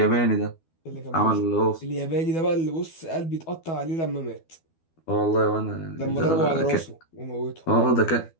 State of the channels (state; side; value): late; right; 12 ms